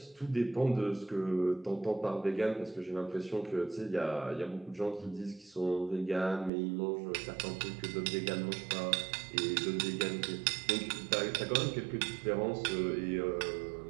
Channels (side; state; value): left; drops out; at 6.5 s